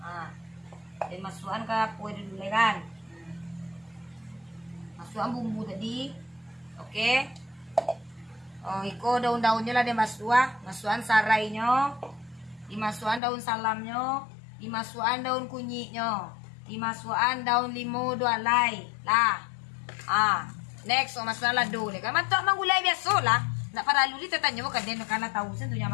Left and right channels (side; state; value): right; drops out; at 13.2 s